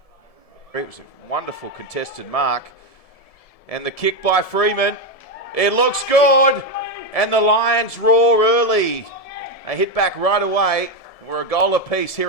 It was a wonderful contested mark. And the kick by Freeman. It looks good. And the Lions roar early. They hit back right away. We're a goal apiece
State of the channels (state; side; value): late; right; 1.7 ms